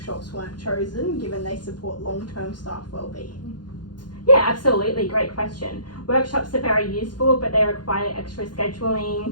weren't chosen, given they support long-term staff wellbeing? Yeah, absolutely, great question. Workshops are very useful, but they require extra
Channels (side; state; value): right; late; 0.70 ms